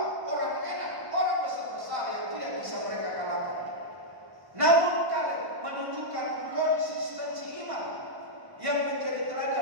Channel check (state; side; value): late; left; 1.1 ms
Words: orang enak, orang besar-besar yang tidak bisa mereka kalahkan. Namun kalian menunjukkan konsistensi iman yang menjadi